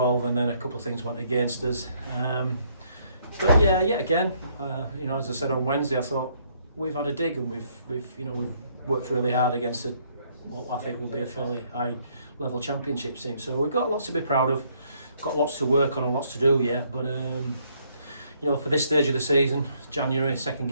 and then a couple of things went against us. But yeah, again, as I said on Wednesday, I thought we've had a dig, and we've worked really hard against what I think will be a fairly high level championship team. So we've got lots to be proud of, got lots to work on and lots to do yet. But for this stage of the season, January, second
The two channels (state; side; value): inverted; both; correlation -0.68